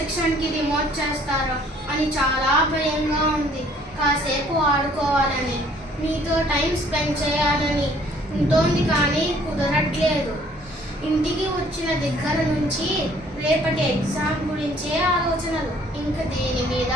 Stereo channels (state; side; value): normal; both; correlation 0.59